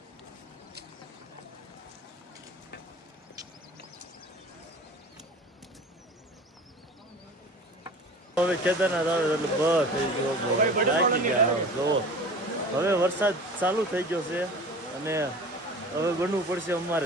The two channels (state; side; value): normal; both; correlation 0.39